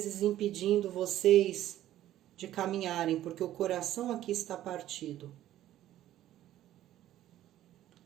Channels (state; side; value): quieter; left; 13.1 dB